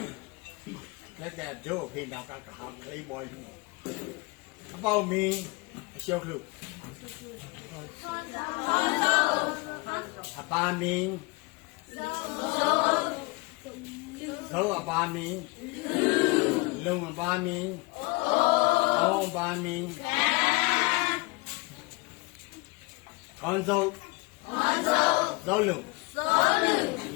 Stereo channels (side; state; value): right; quieter; 26.0 dB